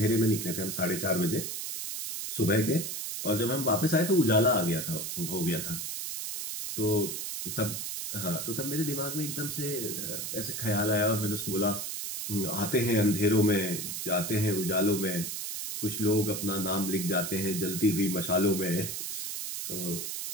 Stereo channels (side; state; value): right; noise; hiss, 5 dB below the sound